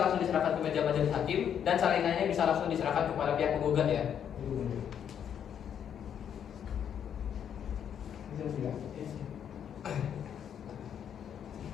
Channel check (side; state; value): right; quieter; 8.7 dB